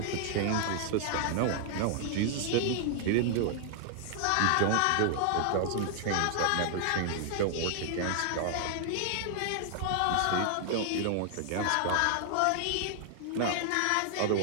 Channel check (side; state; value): both; different; correlation 0.00